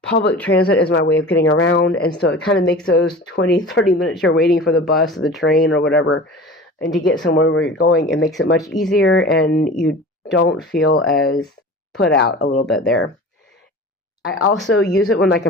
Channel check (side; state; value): both; normal; correlation 0.37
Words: Public transit is my way of getting around. And so it kind of makes those 20, 30 minutes you're waiting for the bus or the train or whatever, and to get somewhere where you're going, it makes it much easier, and you don't feel as put out a little bit there. I also use it when